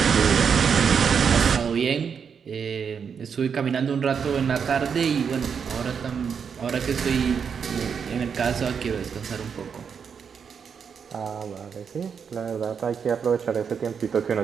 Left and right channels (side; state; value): left; quieter; 6.7 dB